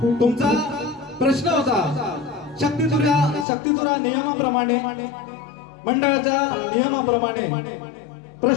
तुमचा प्रश्न होता शक्तितुरा नियमाप्रमाणे, मंडळाच्या नियमाप्रमाणे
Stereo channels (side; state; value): right; drops out; at 3.5 s